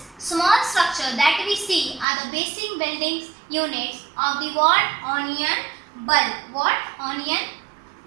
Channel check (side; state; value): left; drops out; at 2.1 s